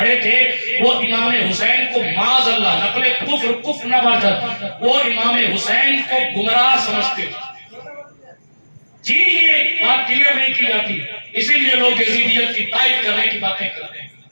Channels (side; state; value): both; inverted; correlation -1.00